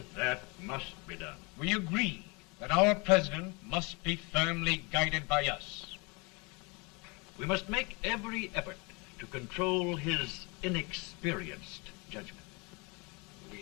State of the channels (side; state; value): right; quieter; 29.1 dB